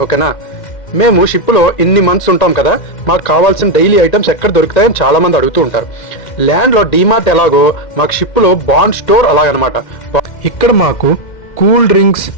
ఓకేనా? మేము షిప్లో ఇన్ని మంత్స్ ఉంటాం కదా, మాకు కావాల్సిన డైలీ ఐటమ్స్ ఎక్కడ దొరుకుతాయని చాలామంది అడుగుతూ ఉంటారు. ల్యాండ్లో డీమార్ట్ ఎలాగో మాకు షిప్లో బాండ్ స్టోర్ అలాగనమాట. ఇక్కడ మాకు cool drinks,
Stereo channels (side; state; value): right; late; 2.1 ms